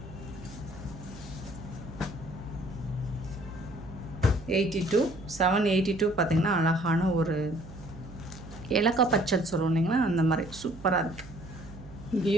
$782 பார்த்திங்கன்னா அழகான ஒரு இலக்கா பச்சல் சொல்லுவோம் இல்லைங்களா, அந்த மாதிரி சூப்பராக இருக்குது.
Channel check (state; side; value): noise; right; hum, 16 dB below the sound